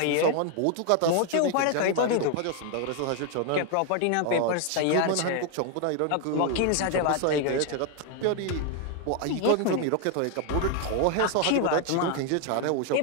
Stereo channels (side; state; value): both; different; correlation 0.01